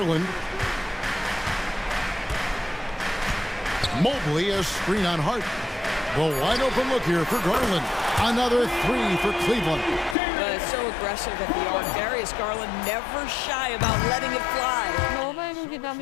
Mobley, a screen on Hart. The wide open look here for Garland. Another three for Cleveland. It's so aggressive at the arc. Darius Garland never shy about letting it fly. Новое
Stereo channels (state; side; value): drops out; right; at 10.2 s